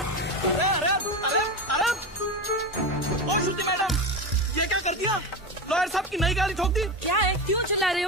लॉयर साहब की नई गाड़ी ठोक दी। क्या है, क्यों चिल्ला रहे हो?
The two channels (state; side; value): normal; both; correlation 0.20